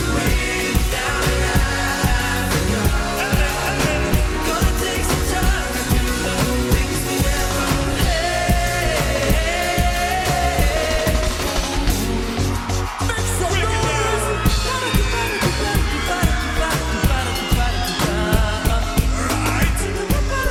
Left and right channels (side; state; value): both; identical; correlation 1.00